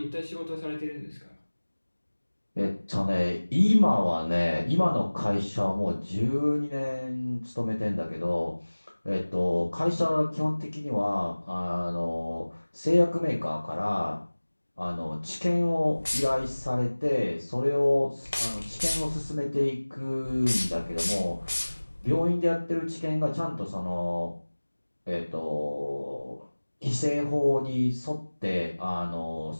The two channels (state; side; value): inverted; both; correlation -1.00